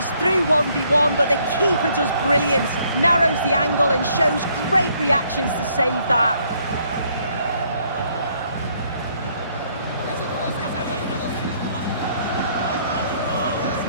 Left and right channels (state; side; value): inverted; both; correlation -0.67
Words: through 1v1, but the keeper does brilliant. Narrows the angle and shows great reactions to save that.